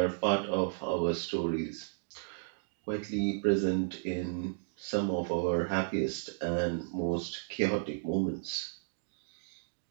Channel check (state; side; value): silent; left; digital silence